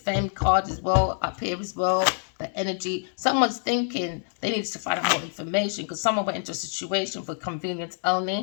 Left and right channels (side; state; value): right; silent; 61 dB below the other